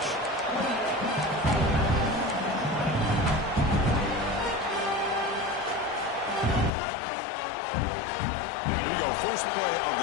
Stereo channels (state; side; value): drops out; right; at 6.7 s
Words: Here we go. First play of